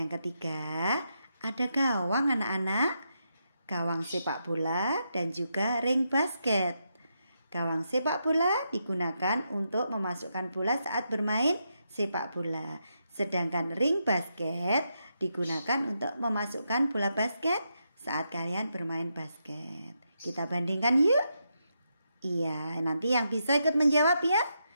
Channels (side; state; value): both; inverted; correlation -0.83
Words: yang ketiga, ada gawang anak-anak. Gawang sepak bola dan juga ring basket. Gawang sepak bola digunakan untuk memasukkan bola saat bermain sepak bola. Sedangkan ring basket digunakan untuk memasukkan bola basket saat kalian bermain basket. Kita bandingkan yuk. Iya, nanti yang bisa ikut menjawab ya.